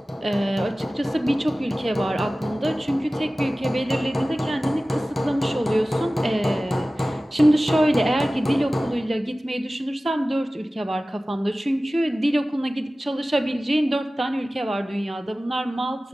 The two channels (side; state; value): both; normal; correlation 0.97